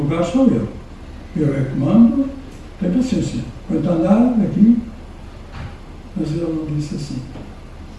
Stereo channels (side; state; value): both; identical; correlation 1.00